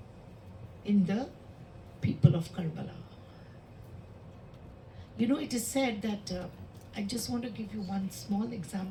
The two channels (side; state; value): both; identical; correlation 1.00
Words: in the people of Karbala. You know, it is said that, I just want to give you one small